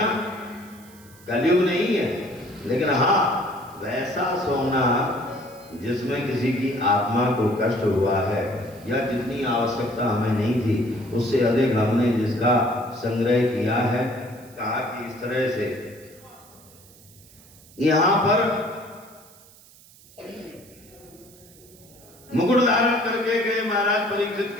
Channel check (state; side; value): noise; right; hiss, 24 dB below the sound